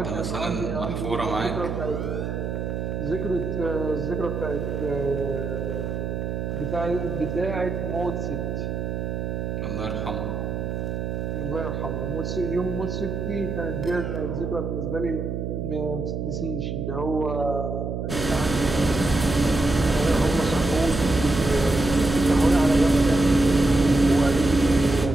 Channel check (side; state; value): right; noise; hum, 3 dB below the sound